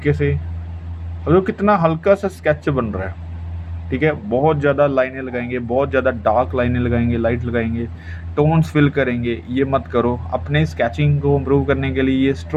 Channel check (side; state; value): both; identical; correlation 1.00